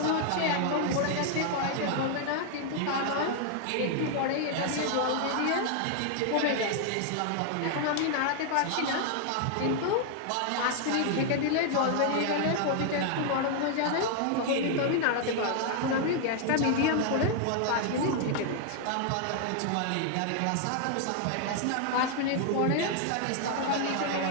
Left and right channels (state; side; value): different; both; correlation 0.00